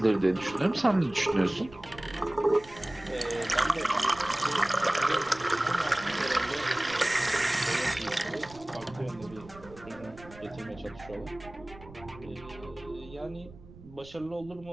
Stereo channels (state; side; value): noise; right; rumble, 19 dB below the sound